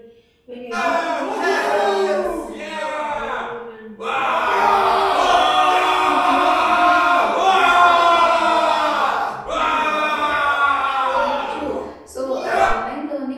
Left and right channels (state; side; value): identical; both; correlation 1.00